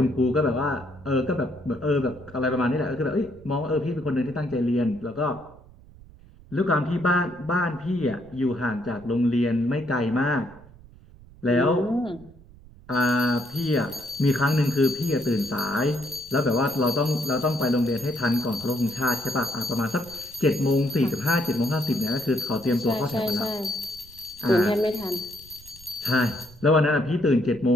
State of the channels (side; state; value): right; noise; rumble, 22 dB below the sound